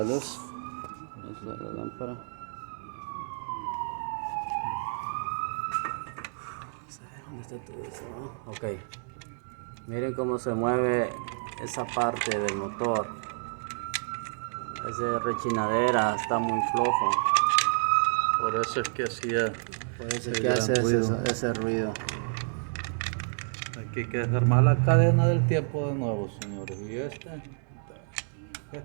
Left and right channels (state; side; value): silent; left; digital silence